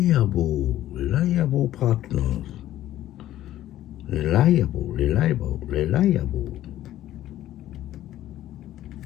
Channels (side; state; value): right; quieter; 13.5 dB